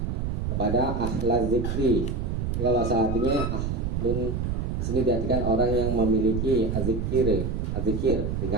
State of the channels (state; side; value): noise; right; rumble, 1 dB below the sound